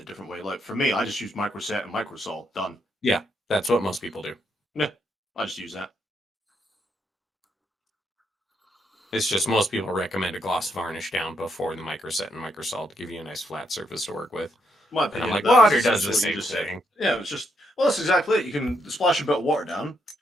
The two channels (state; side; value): normal; both; correlation 0.77